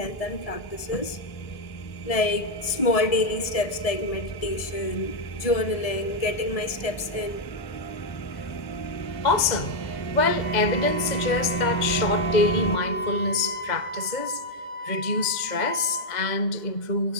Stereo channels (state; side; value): late; right; 2.0 ms